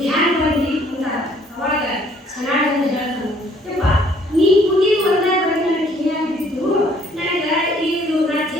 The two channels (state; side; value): normal; both; correlation 0.61